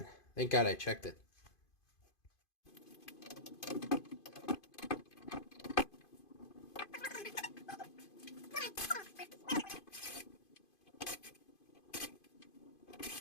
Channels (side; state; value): right; late; 2.5 ms